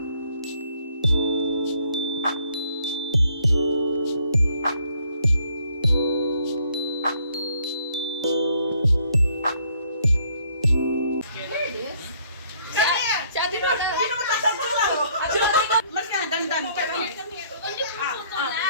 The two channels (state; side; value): inverted; both; correlation -0.65